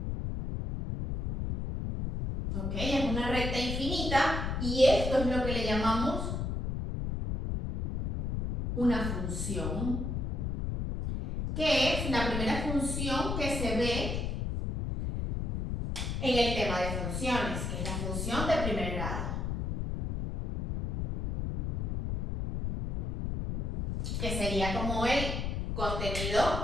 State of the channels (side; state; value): left; noise; rumble, 2 dB below the sound